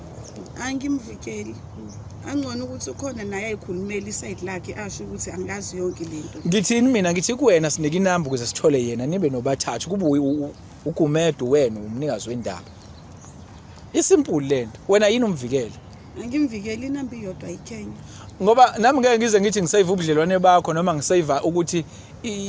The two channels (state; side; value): identical; both; correlation 1.00